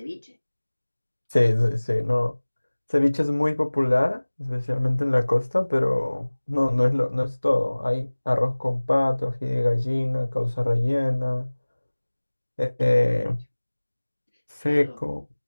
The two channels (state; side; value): inverted; both; correlation -1.00